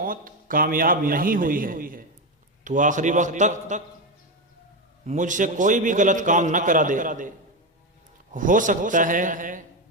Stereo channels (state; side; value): normal; both; correlation 0.12